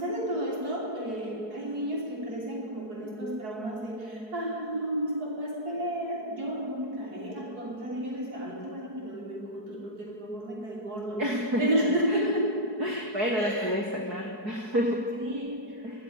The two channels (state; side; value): late; left; 4.7 ms